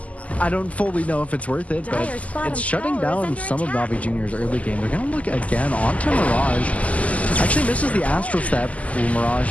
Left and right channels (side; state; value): right; late; 0.070 ms